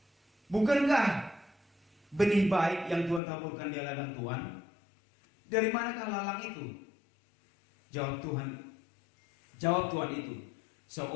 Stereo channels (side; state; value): right; drops out; at 3.2 s